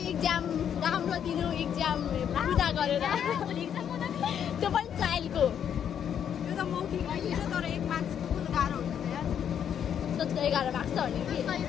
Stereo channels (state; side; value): quieter; right; 8.8 dB